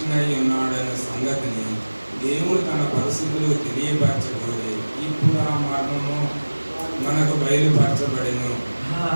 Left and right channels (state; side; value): inverted; both; correlation -1.00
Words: అయి ఉన్నాడన్న సంగతిని దేవుడు తన పరిస్థితులు తెలియపరచబోయి ఇప్పుడు ఆ మర్మము మనకు బయలుపరచబడెను.